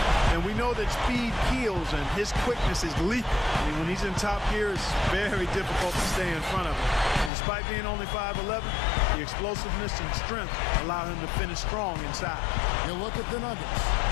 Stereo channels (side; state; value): right; drops out; at 7.3 s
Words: And we know that speed kills, and his quickness is lethal. I mean, when he's in top gear, it's very difficult to stay in front of him. And despite being only 5'11", the explosiveness and strength allow him to finish strong inside. You look at the Nuggets.